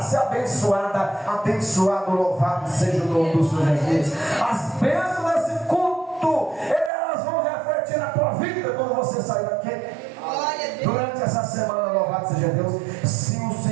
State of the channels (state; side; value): drops out; left; at 6.9 s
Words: ser abençoada, abençoado, louvado seja o nome do Senhor Jesus. As bênçãos desse culto, elas vão refletir na tua vida quando você sair daqui. Durante essa semana, louvado seja Deus. Se o